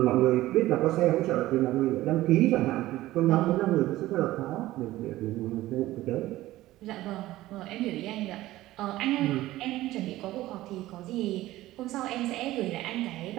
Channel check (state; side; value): quieter; left; 16.2 dB